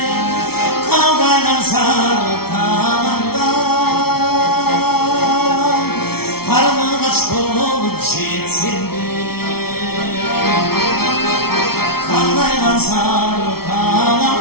kavgadan sarı talandan, karnı kaç olup gitsen de, kavgadan sarı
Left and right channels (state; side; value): late; right; 0.95 ms